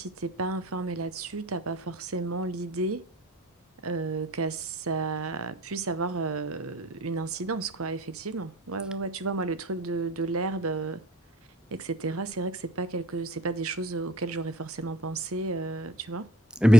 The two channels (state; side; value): normal; both; correlation 0.48